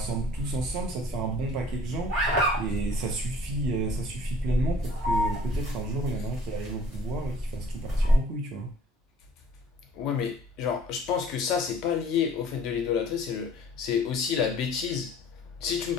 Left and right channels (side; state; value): both; normal; correlation 0.52